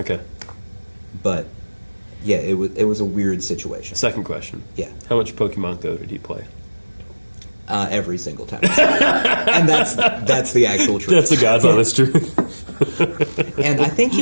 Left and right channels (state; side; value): inverted; both; correlation -1.00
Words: But yeah, it was a weird situation. Second question. Yeah. How much Pokemon Go did he play? Every single time. And that's the actual truth. That's the God's honest truth. And I think